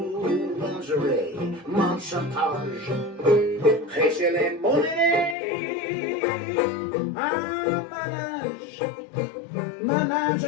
Lingerie, mon chantage, prêcher les monnaies, manage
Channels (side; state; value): right; drops out; at 5.4 s